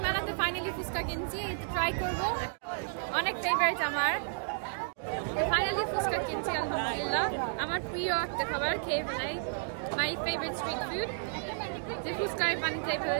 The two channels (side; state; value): left; silent; digital silence